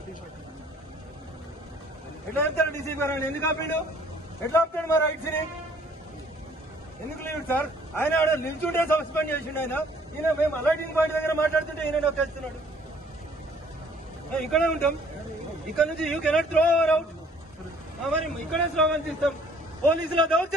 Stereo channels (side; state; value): both; normal; correlation 0.58